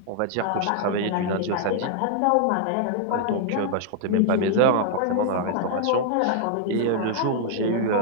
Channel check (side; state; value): both; different; correlation 0.00